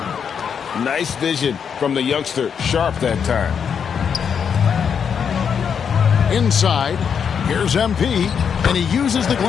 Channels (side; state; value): right; quieter; 7.1 dB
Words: Nice vision from the youngster, Sharp, that time. Inside, here's MP, and he uses the